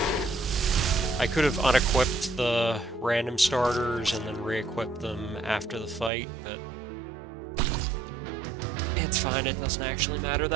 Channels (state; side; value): drops out; left; at 6.1 s